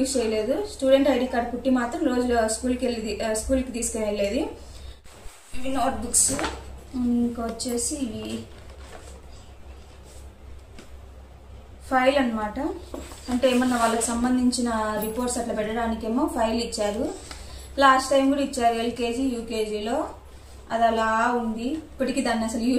చేయలేదు. స్టూడెంట్ ఐడి కార్డు కుట్టి మాత్రం రోజు స్కూల్కి తీసుకుని వెళ్ళేది. ఇవి నోట్ బుక్స్. ఇంకా వచ్చేసి ఇవి ఫైల్ అనమాట. అంటే ఏమన్నా వాళ్ళకి సంబంధించిన రిపోర్ట్స్ అట్లా పెట్టడానికేమో ఫైల్ ఇచ్చారు. లాస్ట్ టైం కూడా ఇచ్చారు ఎల్కేజీ యూకేజీలో. అది అలా ఉంది. ఇప్పటికీ దాన్ని అసలు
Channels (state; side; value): identical; both; correlation 1.00